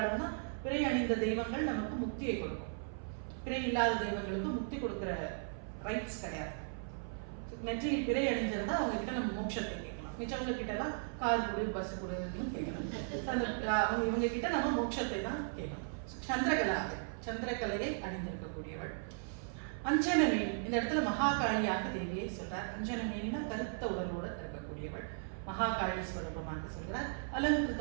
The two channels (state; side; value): silent; left; 53 dB below the other